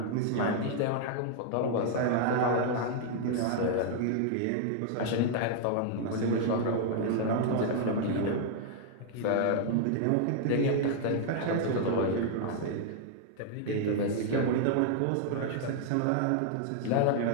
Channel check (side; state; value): both; different; correlation -0.01